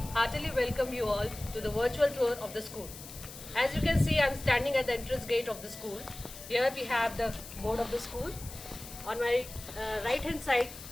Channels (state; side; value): noise; left; hiss, 14 dB below the sound